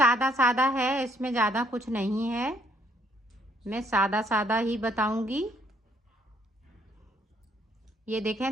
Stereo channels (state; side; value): normal; both; correlation 0.67